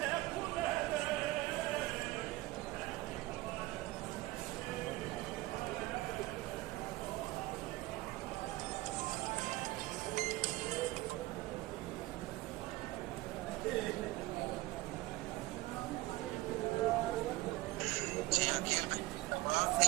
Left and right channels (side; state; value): left; quieter; 18.9 dB